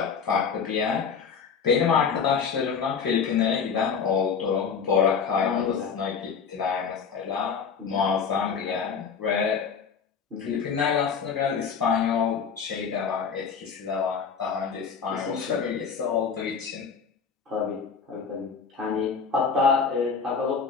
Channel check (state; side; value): quieter; right; 6.1 dB